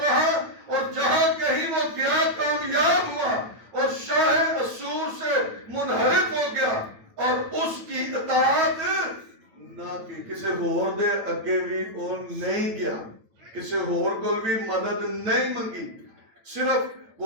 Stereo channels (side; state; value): left; late; 8.9 ms